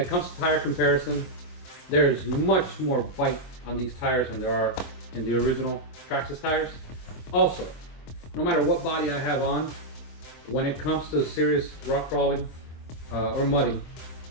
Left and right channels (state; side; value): late; right; 24 ms